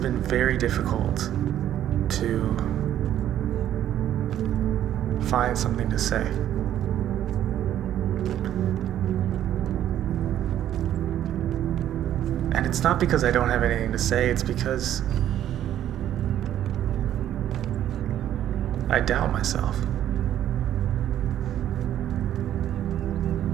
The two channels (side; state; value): left; quieter; 11.4 dB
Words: very difficult to find something to say. And it's not because I don't have anything to say, it's because I doubt myself.